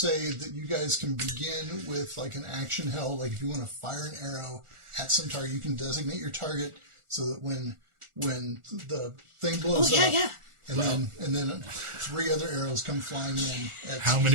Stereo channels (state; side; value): late; left; 1.4 ms